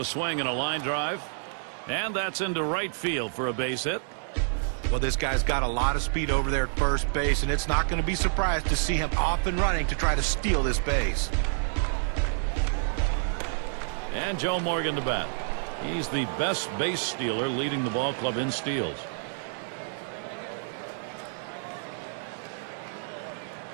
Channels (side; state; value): left; silent; digital silence